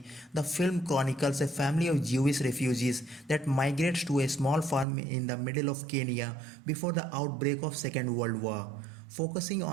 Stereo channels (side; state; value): left; drops out; at 4.9 s